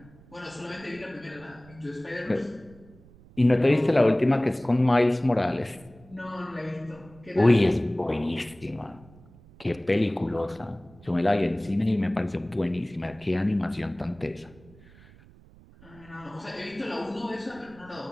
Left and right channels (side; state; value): right; noise; rumble, 24 dB below the sound